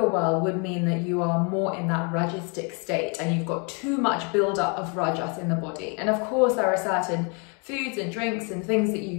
world would mean that you are more in that rajistic state and you've got too much buildup of rajas in the body. And of course there are certain foods and drinks and things that you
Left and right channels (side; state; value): right; quieter; 34.3 dB